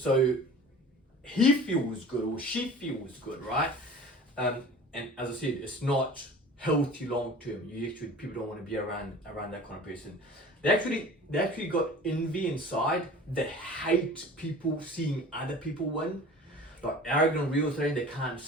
he feels good or she feels good, right? And as I said, it's not healthy long term. People don't want to be around that kind of person. they actually got envy inside. They hate people seeing other people win. Like arrogant real estate, they can't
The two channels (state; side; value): normal; both; correlation 0.42